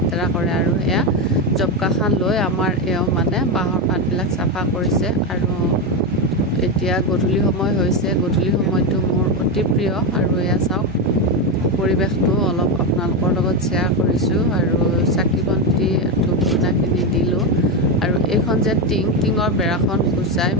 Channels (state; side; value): normal; both; correlation 0.11